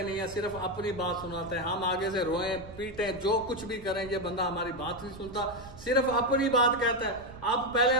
नहीं है, सिर्फ अपनी बात सुनाता है। हम आगे से रोए पीटे जो कुछ भी करें, ये बंदा हमारी बात नहीं सुनता, सिर्फ अपनी बात कहता है। अब पहले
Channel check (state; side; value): noise; right; rumble, 17 dB below the sound